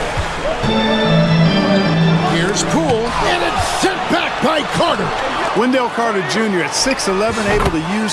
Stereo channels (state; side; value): identical; both; correlation 1.00